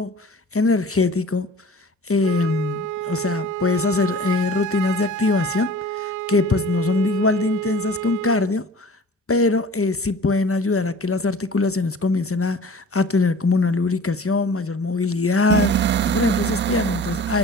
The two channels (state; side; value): normal; both; correlation 0.43